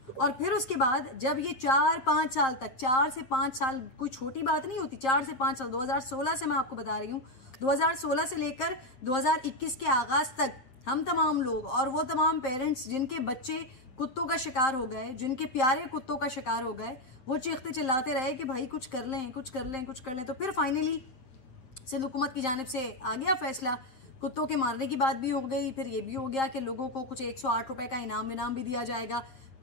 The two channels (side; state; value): right; late; 7.5 ms